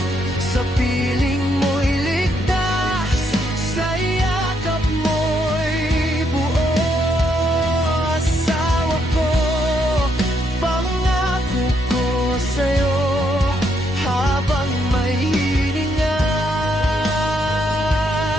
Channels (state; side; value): normal; both; correlation 0.75